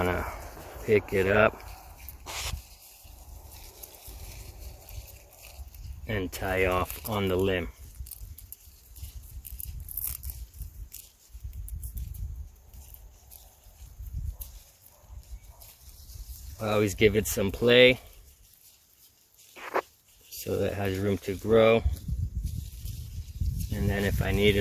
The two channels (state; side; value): identical; both; correlation 1.00